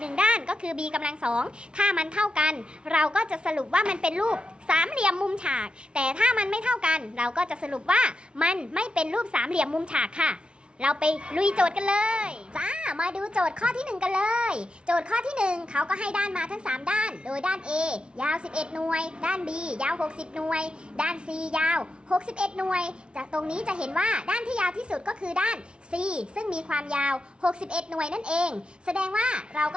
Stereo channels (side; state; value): left; late; 0.056 ms